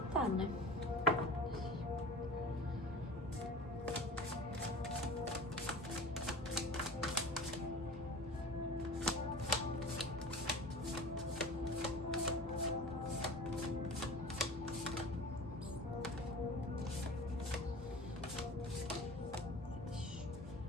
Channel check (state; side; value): normal; both; correlation 0.37